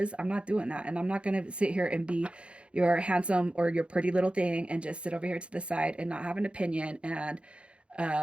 I'm not doing that, and I'm not gonna sit here and be your handsome or your pretty little thing and just sit over here to the side and not have an opinion and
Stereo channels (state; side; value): late; left; 0.059 ms